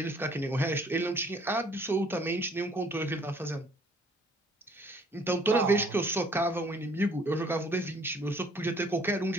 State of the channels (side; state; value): both; normal; correlation 0.59